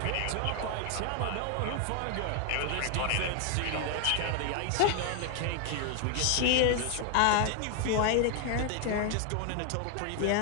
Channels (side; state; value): both; different; correlation 0.00